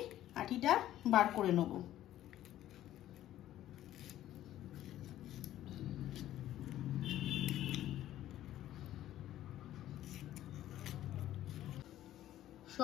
আটিটা বার করে নেব।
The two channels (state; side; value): quieter; right; 13.1 dB